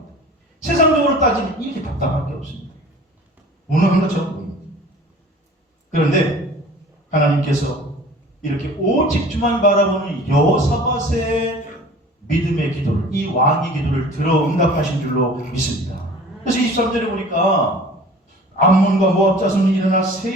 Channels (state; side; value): normal; both; correlation 0.45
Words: 세상적으로 따지면 이렇게 답답할 게 없습니다. 무능한 것처럼 보입니다. 그런데 하나님께서 이렇게 오직 주만 바라보는 여호사밧의 믿음의 기도를, 이 왕의 기도를 들어 응답하신 줄로 믿습니다. 그래서 23절에 보니까 암몬과 모압 자손이 일어나